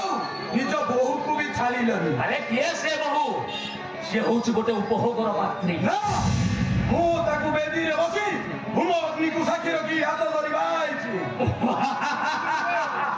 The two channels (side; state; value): both; identical; correlation 1.00